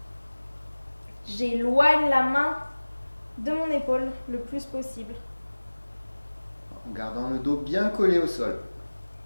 J'éloigne la main de mon épaule le plus possible. En gardant le dos bien collé au sol.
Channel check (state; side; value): inverted; both; correlation -1.00